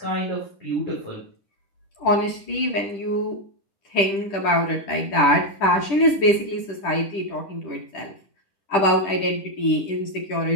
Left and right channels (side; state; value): right; late; 10 ms